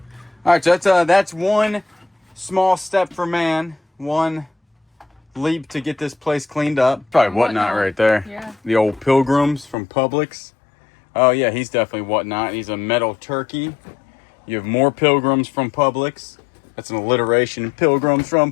right, so that's one small step for man. One leap to get this place cleaned up. Probably Whatnot right there. Yeah. The old Pilgrims from Publix. Oh yeah, he's definitely Whatnot. He's a metal turkey. You have more Pilgrims from Publix. That's an alliteration. Pilgrims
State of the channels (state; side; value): drops out; right; at 9.8 s